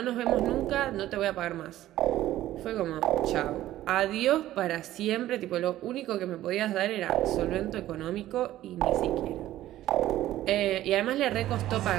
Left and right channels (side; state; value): left; quieter; 14.2 dB